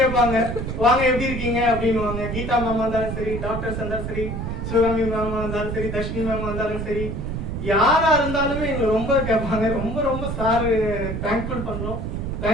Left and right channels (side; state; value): right; noise; rumble, 4 dB below the sound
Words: வாங்க எப்படி இருக்கீங்க அப்படின்னு. கீதா மேமா இருந்தாலும் சரி, டாக்டர்ஸ் இருந்தாலும் சரி, சிவகாமி மேமா இருந்தாலும் சரி, தர்ஷினி மேமா இருந்தாலும் சரி, யாரா இருந்தாலுமே எங்களை ரொம்ப கேட்பாங்க. ரொம்ப சார் தேங்க்ஃபுல் பண்றோம்.